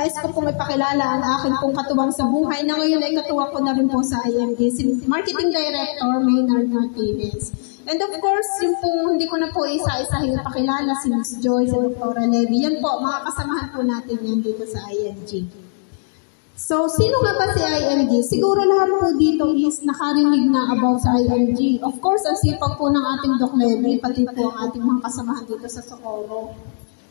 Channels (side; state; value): right; silent; digital silence